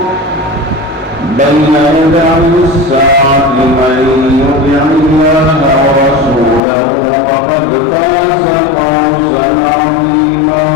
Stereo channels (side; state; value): right; drops out; at 6.6 s